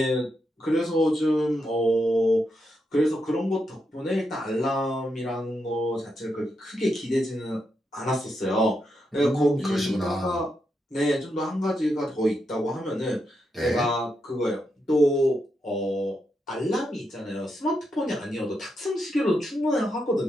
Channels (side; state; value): both; normal; correlation 0.83